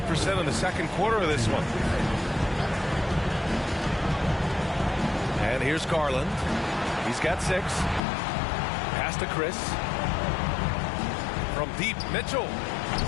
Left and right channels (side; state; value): right; drops out; at 8.0 s